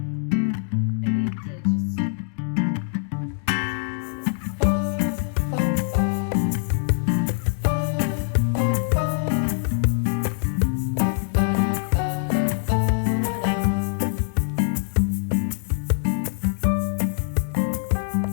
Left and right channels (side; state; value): right; silent; digital silence